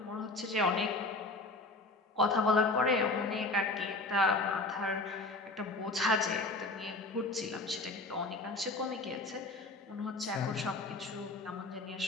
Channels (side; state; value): right; quieter; 3.0 dB